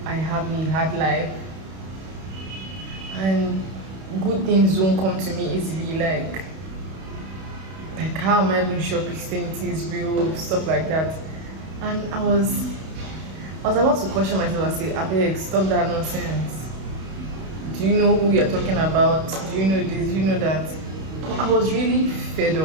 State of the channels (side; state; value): left; late; 31 ms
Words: I have a hard life and good things don't come to me easily. Like how am I even sure Christianity is real, stuff like that. And I was about to question myself and say, Abeg, stop that nonsense. Do you know who you're talking about? Do you know this? Do you know that? But I was really fed